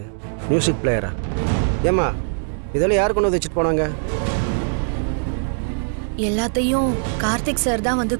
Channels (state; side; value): silent; left; digital silence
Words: மியூசிக் பிளேயரா? ஏம்மா இதெல்லாம் யார் கொண்டு வந்து வச்சுட்டு போனாங்க? எல்லாத்தையும் கார்த்திக் சார் தான் வந்து